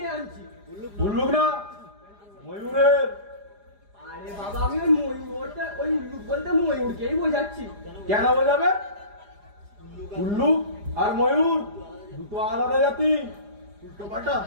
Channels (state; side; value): late; left; 4.9 ms